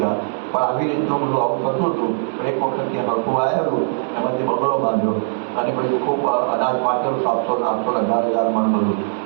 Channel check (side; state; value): left; silent; digital silence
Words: પણ આવી રીતનું બધું આવું થતું હતું. એક વખત ત્યાં હળકું આવેલું, એમાંથી બગડો બાંધ્યો અને પછી ખૂબ અનાજ પાકેલું 700-800-1000 મણ બધું.